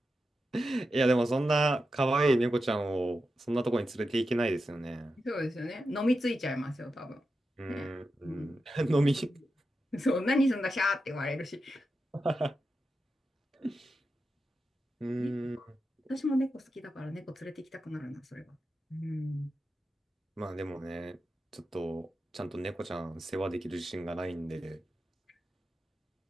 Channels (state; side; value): normal; both; correlation 0.89